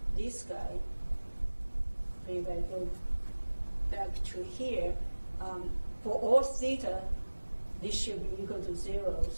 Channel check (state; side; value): inverted; both; correlation -1.00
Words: this guy. If I go back to here, for all theta, this should be equal to 0.